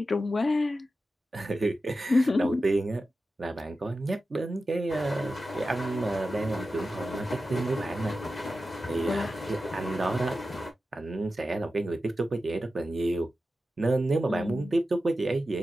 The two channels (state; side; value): normal; both; correlation 0.92